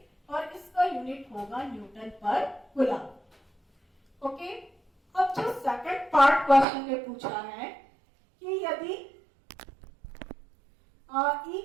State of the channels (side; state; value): left; drops out; at 6.7 s